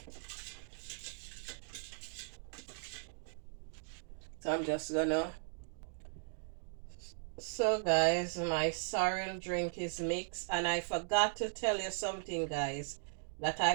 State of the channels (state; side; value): silent; left; digital silence